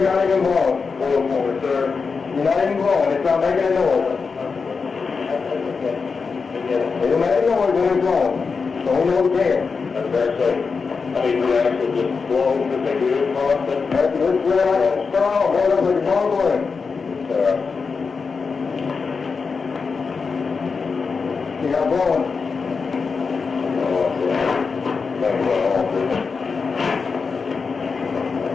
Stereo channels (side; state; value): right; quieter; 5.0 dB